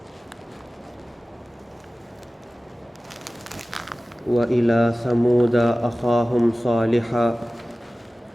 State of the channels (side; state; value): both; normal; correlation 0.97